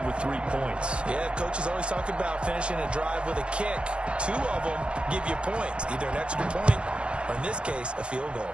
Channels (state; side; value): late; left; 0.057 ms